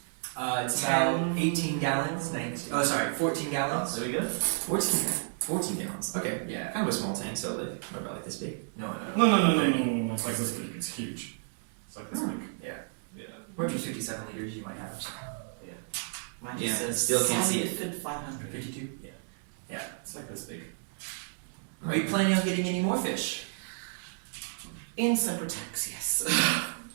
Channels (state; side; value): silent; left; digital silence